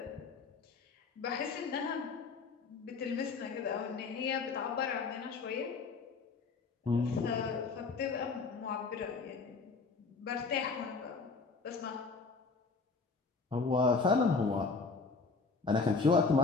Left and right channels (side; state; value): right; quieter; 4.4 dB